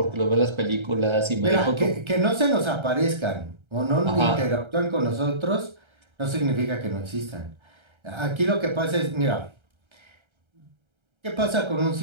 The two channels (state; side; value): late; left; 1.3 ms